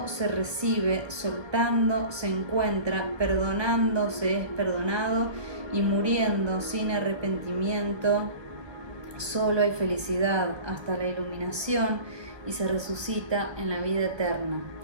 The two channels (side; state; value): left; late; 1.3 ms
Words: se recibe, soltando se encuentra, perdonando se es perdonado y muriendo sin arrepentimiento. Solo hay felicidad hasta la iluminación y se resucita en la vida eterna.